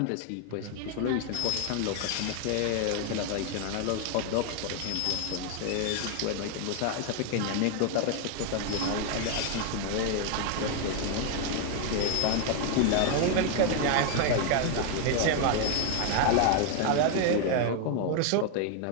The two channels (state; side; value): different; both; correlation 0.00